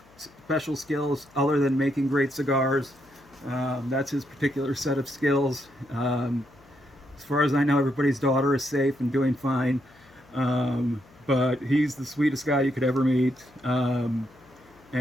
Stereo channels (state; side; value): noise; left; hum, 28 dB below the sound